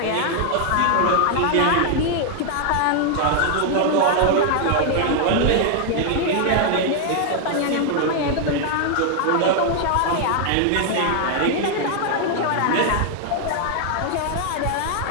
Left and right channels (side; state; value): both; different; correlation 0.00